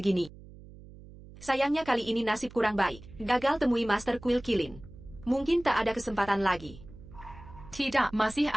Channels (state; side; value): noise; right; hum, 18 dB below the sound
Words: Sayangnya kali ini nasib kurang baik, gagal temui Master Kuil Kilin. Mungkin tak ada kesempatan lagi. Tidak, masih